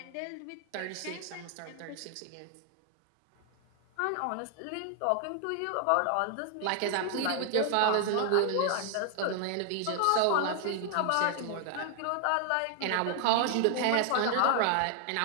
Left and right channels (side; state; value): both; different; correlation 0.00